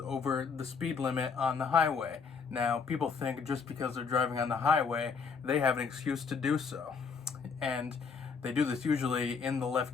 the speed limit on the highway. Now, people think just because they're driving on the highway, they have an excuse to do so. And they do this usually in the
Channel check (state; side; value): quieter; right; 5.5 dB